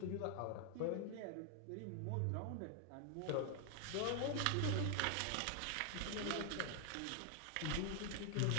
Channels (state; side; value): different; both; correlation 0.00